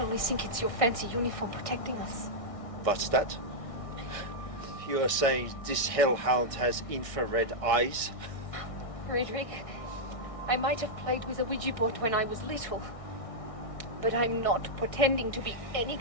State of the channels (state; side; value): late; right; 1.6 ms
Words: only think it's your fancy uniform protecting us. What's that? You are saying this hellhound has infrared eyes? Friedrich, I might have played with a Ouija board when I was little, but I'm not pretending to be any